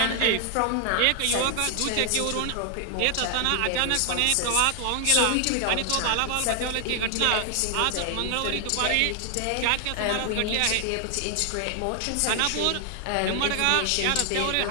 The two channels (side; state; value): both; different; correlation 0.00